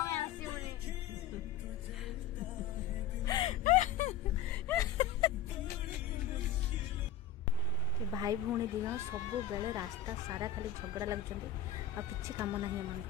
भाई भौणी दी जन सब बेले रास्ता सारा खाली झगड़ा लगुंट आ किसी काम ना मन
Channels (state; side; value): quieter; right; 8.5 dB